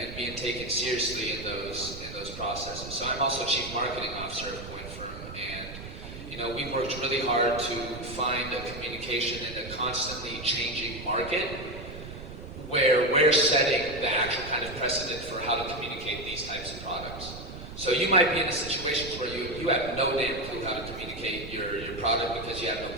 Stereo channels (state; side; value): noise; right; rumble, 11 dB below the sound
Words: being taken seriously in those processes. So I'm also Chief Marketing Officer of CoinFirm, and we've worked really hard to find a communication in a constantly changing market where we're setting the actual kind of precedent for how to communicate these types of products. So you might be in situations where you have no damn clue how to communicate your product because you have no